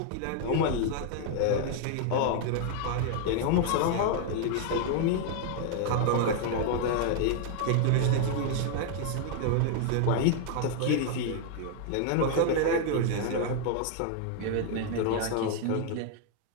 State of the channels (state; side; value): different; both; correlation 0.00